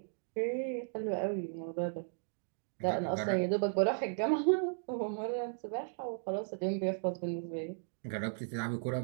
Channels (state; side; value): silent; left; digital silence